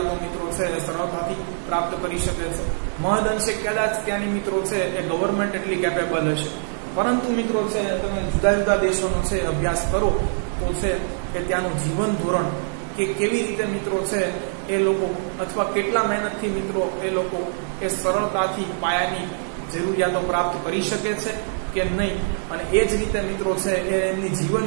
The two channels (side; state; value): left; silent; 63 dB below the other